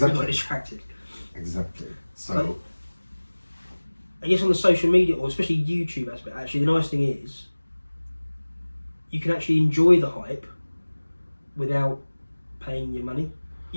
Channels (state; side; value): inverted; both; correlation -1.00